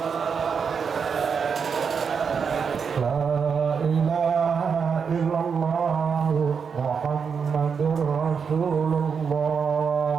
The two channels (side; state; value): left; quieter; 6.2 dB